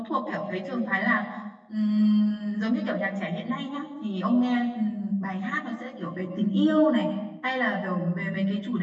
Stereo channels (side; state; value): both; identical; correlation 1.00